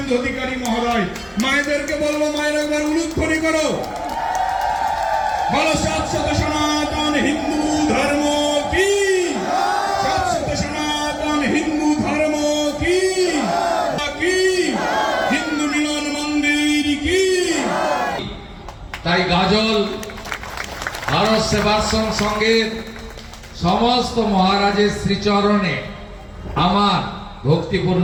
অধিকারী মহোদয়। মায়েদেরকে বলবো, মায়ের একবার উলুধ্বনি করো, বলো শাশ্বত সনাতন হিন্দু ধর্ম কি, শাশ্বত সনাতন হিন্দু ধর্ম কি, হিন্দু মিলন মন্দির কি। তাই গাজল ভারত সেবাশ্রম সংঘের সমস্ত মহারাজের শ্রীচরণে আমার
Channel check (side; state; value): both; identical; correlation 1.00